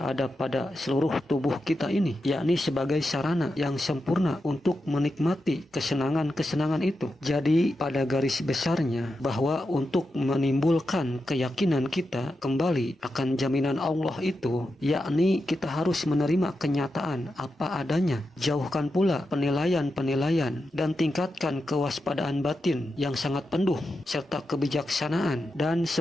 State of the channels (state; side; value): normal; both; correlation 0.88